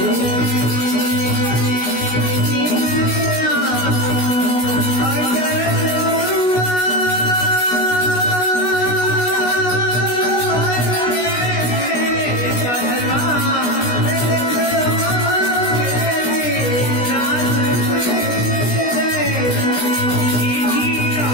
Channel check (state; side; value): late; right; 16 ms